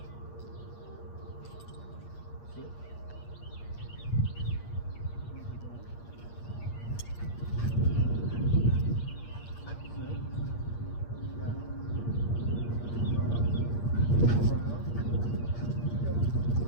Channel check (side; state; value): right; late; 8.5 ms